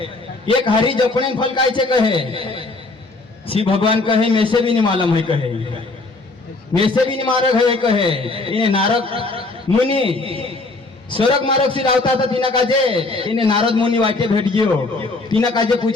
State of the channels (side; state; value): right; quieter; 3.3 dB